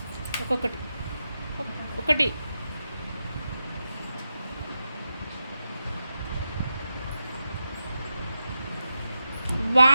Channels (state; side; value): inverted; both; correlation -0.89